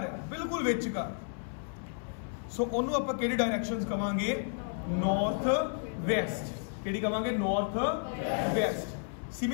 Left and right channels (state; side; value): silent; right; 56 dB below the other